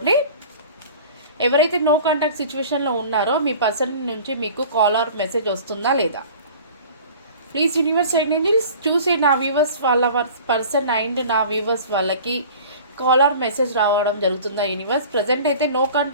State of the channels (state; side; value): inverted; both; correlation -0.43